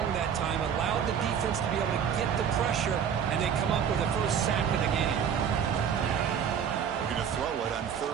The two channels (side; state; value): left; quieter; 7.9 dB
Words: that time, allowed the defense to be able to get the pressure, and they come up with the first sack of the game. Looking to throw it on